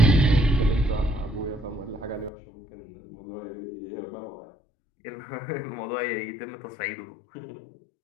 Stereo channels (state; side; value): drops out; right; at 2.3 s